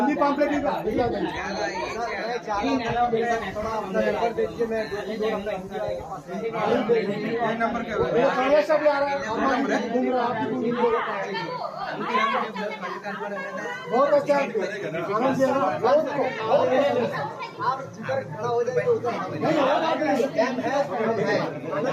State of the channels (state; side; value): identical; both; correlation 1.00